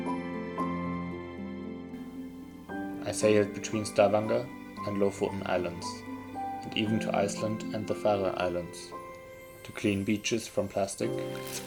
I sailed between Stavanger and Lofoten Islands, and even to Iceland and the Faroe Islands, to clean beaches from plastic and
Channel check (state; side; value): identical; both; correlation 1.00